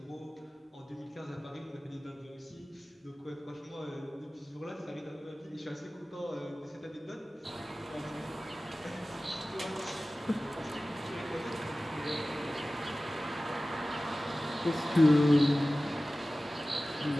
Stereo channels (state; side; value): normal; both; correlation 0.97